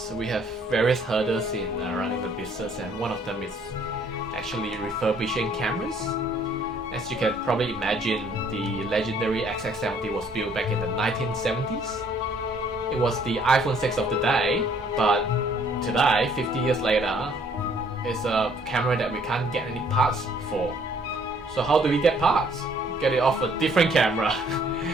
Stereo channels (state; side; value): normal; both; correlation 0.62